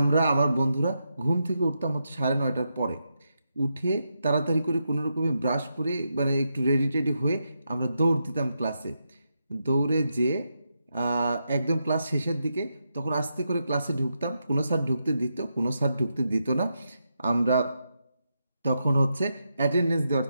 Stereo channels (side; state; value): both; inverted; correlation -0.84